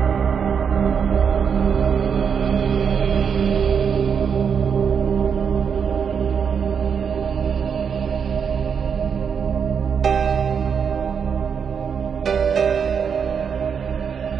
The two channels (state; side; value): quieter; left; 6.8 dB